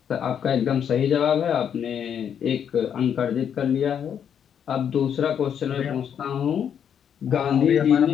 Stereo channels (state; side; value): quieter; right; 8.4 dB